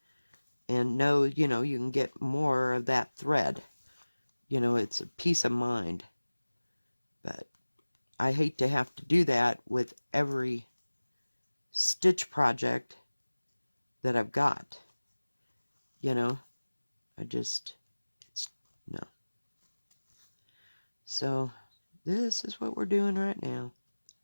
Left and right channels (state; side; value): inverted; both; correlation -1.00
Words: and know, you can get more of that thread. It's a peace of mind. But I hate to have to do that with every stitch project that I've got. No. So this is what we're doing right now.